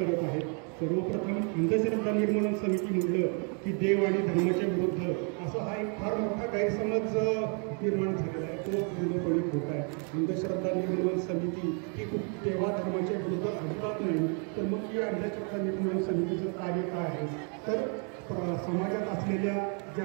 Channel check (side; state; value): left; quieter; 39.2 dB